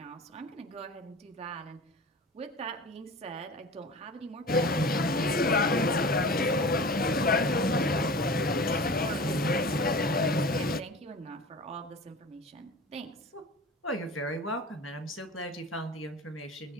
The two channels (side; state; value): both; normal; correlation 0.37